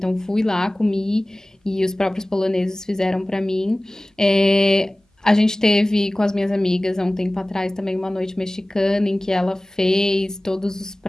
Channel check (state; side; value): normal; both; correlation 0.98